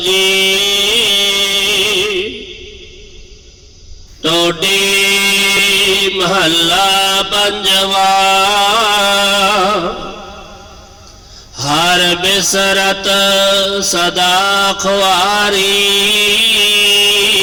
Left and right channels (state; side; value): identical; both; correlation 1.00